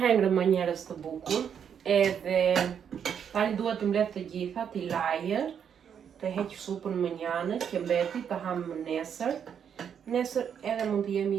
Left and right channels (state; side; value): quieter; left; 8.0 dB